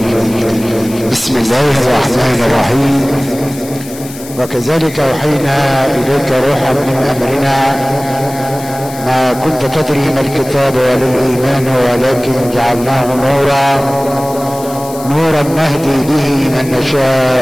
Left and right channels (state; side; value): noise; left; hiss, 15 dB below the sound